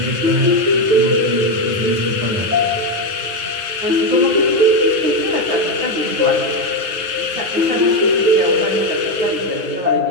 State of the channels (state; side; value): late; left; 9.4 ms